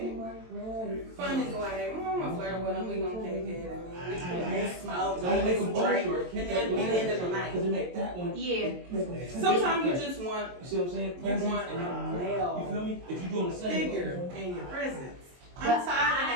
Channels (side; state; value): left; late; 23 ms